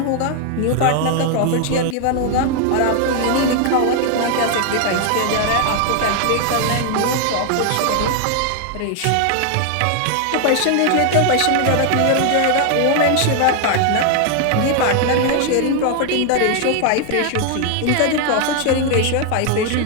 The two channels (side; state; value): both; different; correlation 0.00